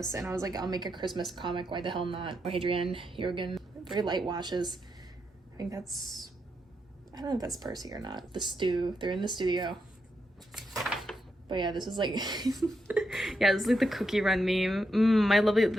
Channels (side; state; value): both; normal; correlation 0.83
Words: and I was like, I'll make a Christmas comic. Why the hell not? Hadrian, Jurgen, very light washes. I think that's, I don't know if that's Percy or not. The stew. They're in the studio. But yeah, this is like, yeah, this is like the cookie run meme. I love